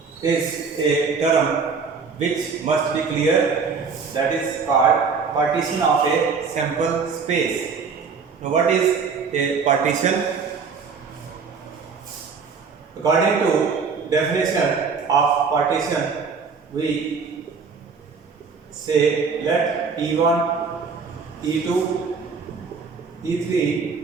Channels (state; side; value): quieter; left; 5.4 dB